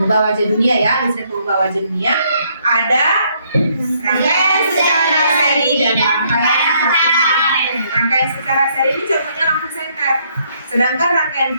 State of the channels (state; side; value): inverted; both; correlation -0.69